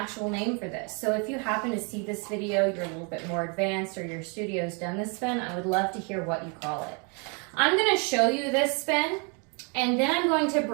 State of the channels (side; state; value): left; quieter; 34.8 dB